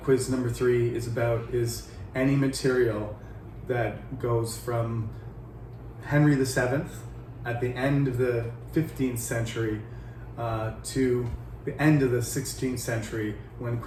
quiz number 3 is about is any material that goes from Henry VII at the end of the 15th century to the end of the 16th century when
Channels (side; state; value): both; identical; correlation 1.00